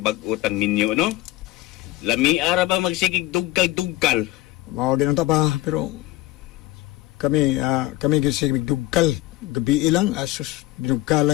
ninyo, no? Lami ara ba magsigig duggal-duggal? Mao din ta pa, pero kami kasi dugkal. Gabi ilang, asus,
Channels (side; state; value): right; quieter; 17.4 dB